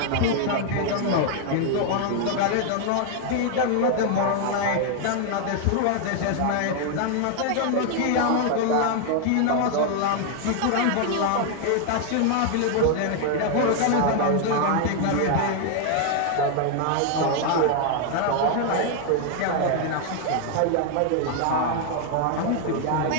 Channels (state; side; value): different; both; correlation 0.00